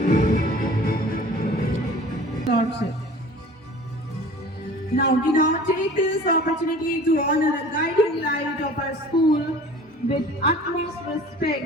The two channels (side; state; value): both; normal; correlation 0.44